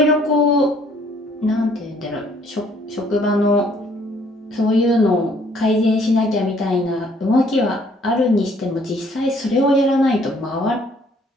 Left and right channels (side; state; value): both; normal; correlation 0.62